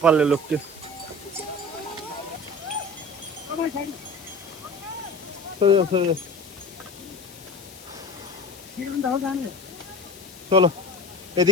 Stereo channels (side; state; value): left; noise; hiss, 19 dB below the sound